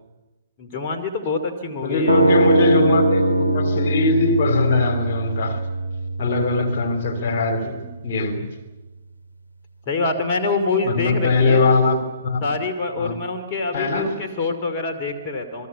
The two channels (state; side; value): inverted; both; correlation -0.63